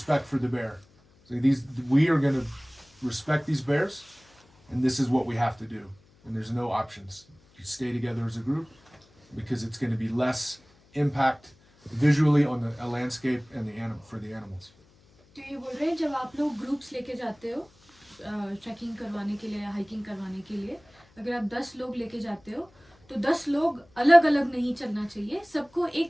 for the bear. So we are going to respect these bears, and this is what we have to do. And there's no options. You stay together as a group because it's going to be less impact visually on the landscape and for the animals. तो ये बोल रहे हैं जब आप लोग groups लेके जाते हो ट्रैकिंग करवाने के लिए या हाइकिंग करवाने के लिए, अगर आप 10 लोग लेके जाते हो तो 10 लोग अलग अलग नहीं चलना चाहिए, सबको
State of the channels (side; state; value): left; noise; hum, 30 dB below the sound